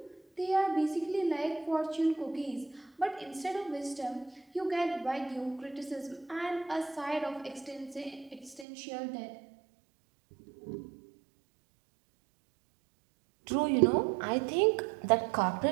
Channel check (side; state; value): left; drops out; at 8.7 s